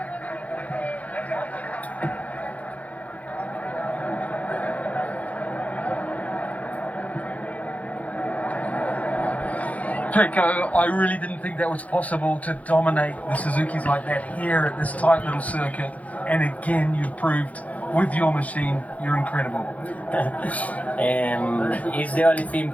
Pecco, I really didn't think that was possible to dominate the Suzukis like that here at this tight little circuit. And again, you proved with your machine, you're incredible. It's the only thing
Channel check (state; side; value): late; right; 0.069 ms